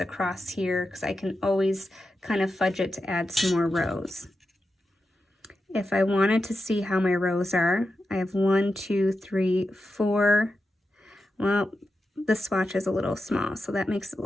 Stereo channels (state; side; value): normal; both; correlation 0.90